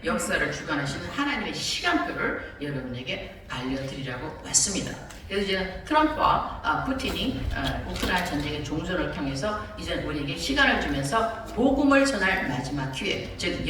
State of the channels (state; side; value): identical; both; correlation 1.00